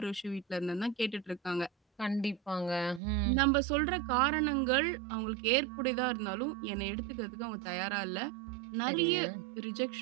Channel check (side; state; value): left; drops out; at 3.0 s